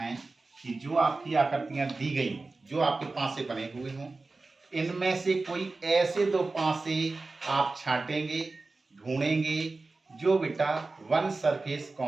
कि जो आपकी आकृतियां दी गई, जो आपके पासे बने हुए हों, इनमें से कोई ऐसे दो पासे आप छांटेंगे, ढूंढेंगे जो बेटा वन सरफेस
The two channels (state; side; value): quieter; left; 3.5 dB